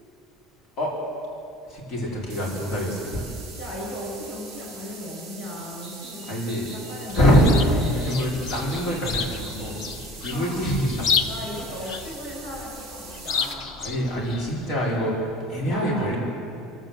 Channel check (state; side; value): normal; both; correlation 0.47